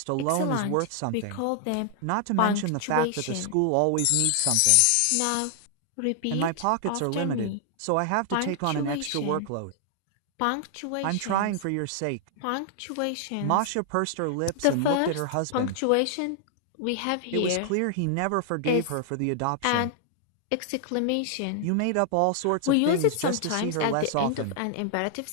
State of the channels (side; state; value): both; different; correlation 0.00